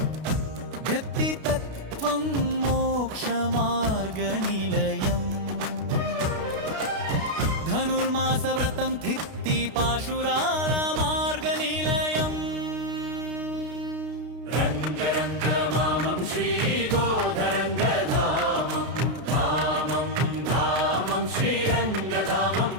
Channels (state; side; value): late; left; 32 ms